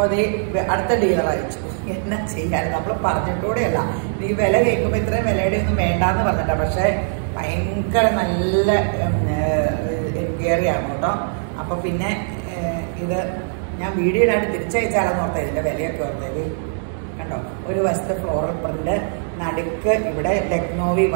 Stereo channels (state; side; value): silent; left; 65 dB below the other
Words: അടുത്ത ഡീലർ അയച്ചു. എന്നാ ചെയ്യാൻ, നമ്മൾ പറഞ്ഞിട്ടൂടെയല്ല. ഈ വില കേൾക്കുമ്പോൾ ഇത്രയും വിലയുടെ ഒന്നും വേണ്ടാന്ന് പറഞ്ഞിട്ടാ. പക്ഷെ ഭയങ്കര നല്ല എൻക്വയറിയാണ് കേട്ടോ. അപ്പൊ പിന്നെ ഇത് ഞാൻ വീഡിയോയിലായിട്ട് തിരിച്ചയച്ചാലെന്ന് ഓർത്തത്, ഇതിന്റെ വിലയൊക്കെ ഓർത്തത് കണ്ടോ. ഒരു വശത്ത് ഫ്ലോറൽ പ്രിന്റ്, നടുക്ക് ഇവിടെ ലക്നോവി